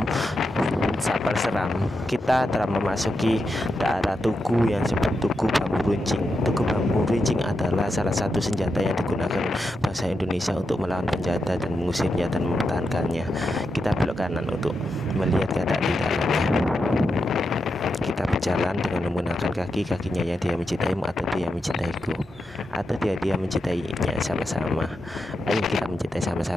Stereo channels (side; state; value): both; normal; correlation 0.86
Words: Sapal Seram, kita telah memasuki daerah Tugu yang disebut Tugu Bambu Runcing. Tugu Bambu Runcing adalah salah satu senjata yang digunakan bangsa Indonesia untuk melawan penjajah dan mengusirnya dan mempertahankannya. Kita belok kanan untuk melihat keadaan di dalamnya. Kita berjalan dengan menggunakan kakinya yang dia mencintaimu atau dia mencintaiku, atau dia mencintainya sama-sama. Ayo kita mencintai